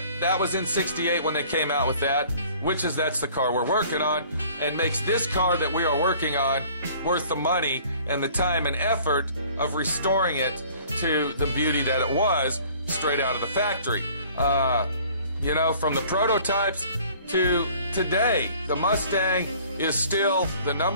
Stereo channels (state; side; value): inverted; both; correlation -0.52